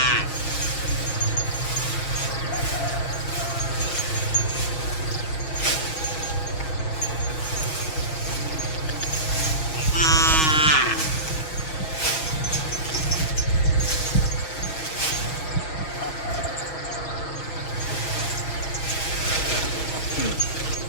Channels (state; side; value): late; right; 6.3 ms